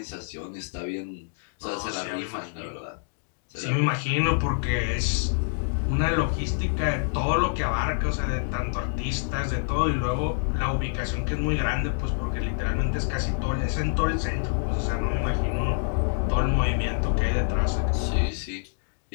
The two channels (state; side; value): silent; right; digital silence